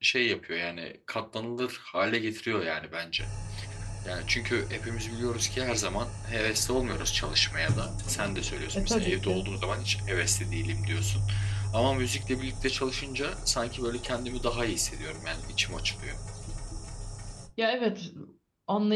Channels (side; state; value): both; identical; correlation 1.00